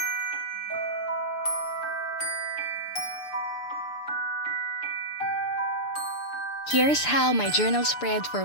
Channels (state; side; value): late; right; 6.8 ms